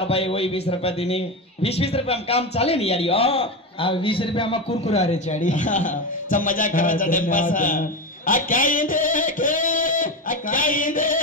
भाई वही 20 रुपए दिनी 20 रुपए हम काम चाले नहीं यारी आ 20 रुपए हम कुरकुरा रे चाड़ी सब मजाक करा चढ़े पास आ क्या देखे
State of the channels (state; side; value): normal; both; correlation 0.17